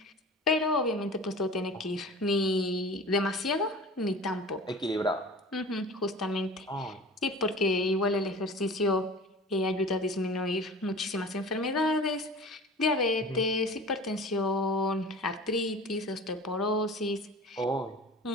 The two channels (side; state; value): both; normal; correlation 0.39